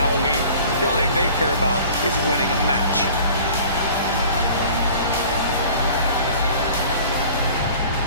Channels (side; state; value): both; inverted; correlation -0.46